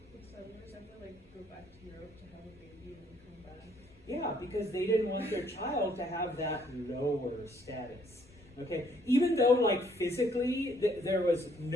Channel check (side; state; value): both; normal; correlation 0.66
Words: So settlers, I feel like, go back to Europe to have a baby and then come back. Yeah, because they didn't want their child to have that lower status. Okay, even though like physically there was